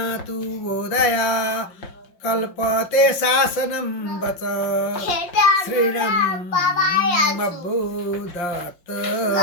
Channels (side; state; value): right; late; 5.7 ms